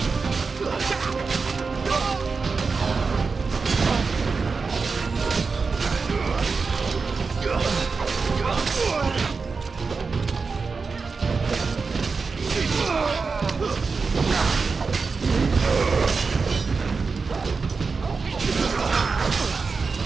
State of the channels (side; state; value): left; quieter; 4.7 dB